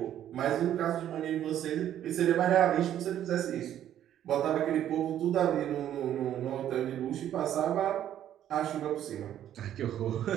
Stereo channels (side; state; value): left; quieter; 11.1 dB